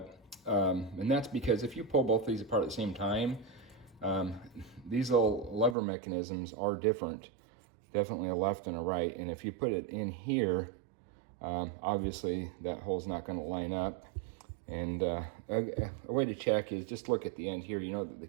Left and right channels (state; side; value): drops out; left; at 5.8 s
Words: And that's because if you pull both these apart at the same time, these little lever mechanisms are different. Definitely a left and a right. And if you put it in here, obviously that hole's not going to line up. And a way to check is just look at the end here. You know that the